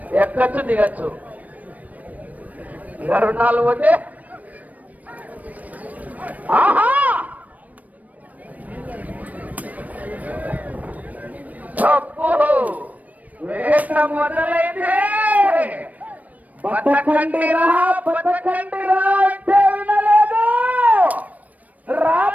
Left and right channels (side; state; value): left; late; 0.073 ms